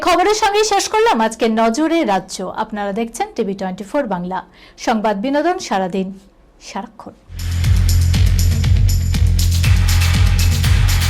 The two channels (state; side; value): identical; both; correlation 1.00